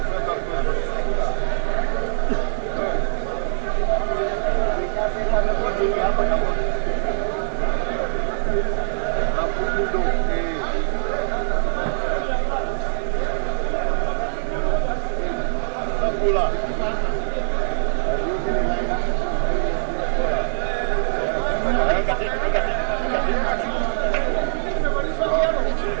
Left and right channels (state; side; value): silent; left; digital silence